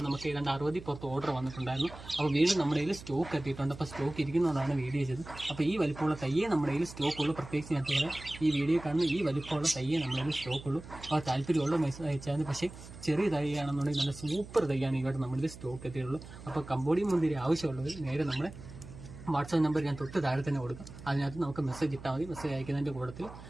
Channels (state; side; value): noise; right; hum, 15 dB below the sound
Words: നമുക്ക് ഏതാണ്ട് 60 പുറത്ത് ഓർഡർ വന്നിട്ടുണ്ടായിരുന്നു. അപ്പോൾ വീണ്ടും നമ്മുടെ കയ്യിൽ സ്റ്റോക്ക് എത്തിയിട്ടുണ്ട്. അപ്പോൾ സ്റ്റോക്ക് ഇരിക്കുന്നതുകൊണ്ടാണ് വീഡിയോ ചെയ്തത്. അപ്പോൾ ഈ വലിപ്പമുള്ള തയ്യേ നമ്മുടെ കയ്യിൽ സ്റ്റോക്കുള്ളൂ. പ്രത്യേകിച്ച് ഞാൻ പറയാം, ഈ വീഡിയോ കാണുന്ന ഈ വലിപ്പമുള്ള തയ്യേ നമ്മുടെ കയ്യിൽ സ്റ്റോക്കുള്ളൂ. അപ്പോൾ താല്പര്യമുള്ള മെസ്സേജ് അയച്ചാൽ. പക്ഷേ ചെറിയ തയ്യാണെന്നുണ്ടെങ്കിൽ നല്ല സൂപ്പർ തയ്യാണ് ഇവിടെ നമ്മുടെ സ്റ്റോക്ക് എത്തിയിട്ടുള്ളൂ. അപ്പോൾ കമ്പോഡിയം മുന്തിരി ആവശ്യമുള്ളവർ നേരെ നമ്മുടെ വാട്സാപ്പ് നമ്പർ ഞാൻ തൊട്ട് താഴെ തന്നെ കൊടുക്കാം. അതിനകത്ത് നമുക്ക് മെസ്സേജ് ഇട്ടാൽ മതി. മെസ്സേജ് അയക്കുന്നതിൻ്റെ കൂട്ടത്തിൽ